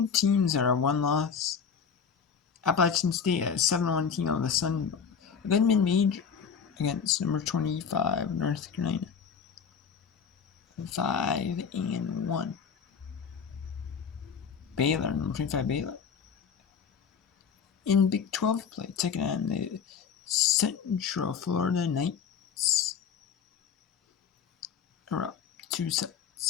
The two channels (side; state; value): right; quieter; 6.7 dB